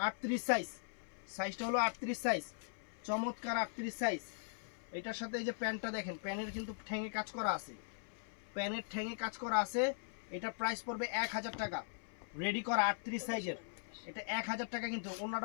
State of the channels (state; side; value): silent; right; 51 dB below the other